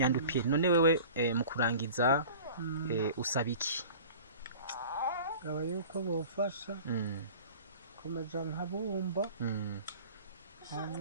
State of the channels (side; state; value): both; inverted; correlation -0.41